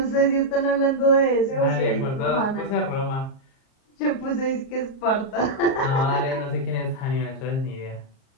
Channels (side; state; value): right; late; 38 ms